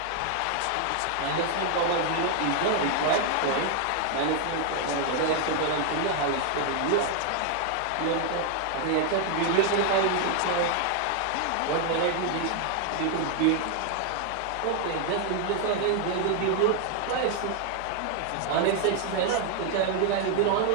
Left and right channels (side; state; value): both; different; correlation 0.00